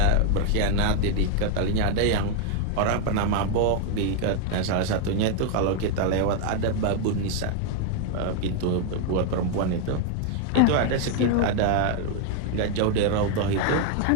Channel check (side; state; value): both; different; correlation 0.00